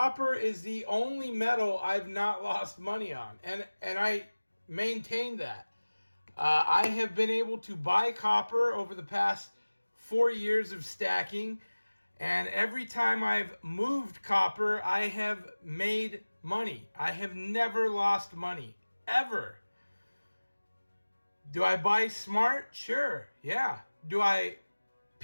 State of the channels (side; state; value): both; inverted; correlation -1.00